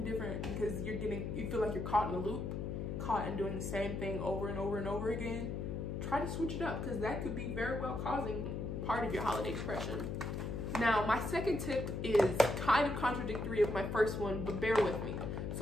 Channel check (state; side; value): noise; left; hum, 3 dB below the sound